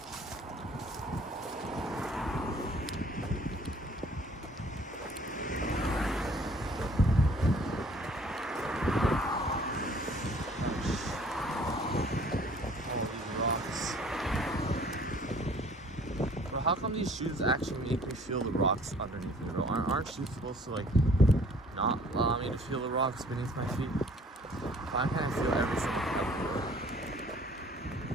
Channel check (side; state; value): both; normal; correlation 0.55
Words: How come these shoes actually make me feel the rocks underneath me, bro? Aren't shoes supposed to, like, not allow me to feel the rocks beneath my feet? Why can't I feel everything everywhere?